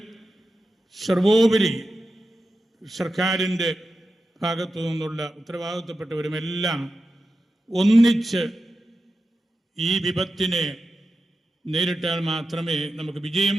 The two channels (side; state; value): both; normal; correlation 0.91